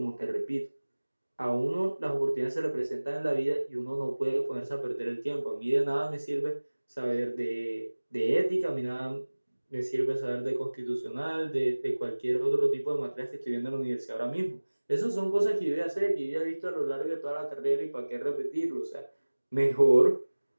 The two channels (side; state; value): both; inverted; correlation -1.00